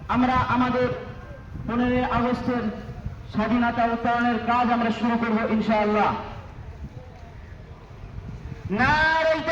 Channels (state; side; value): identical; both; correlation 1.00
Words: আমরা আমাদের 15 আগস্টের স্বাধীনতা উত্তরণের কাজ আমরা শুরু করব ইনশাআল্লাহ। নারে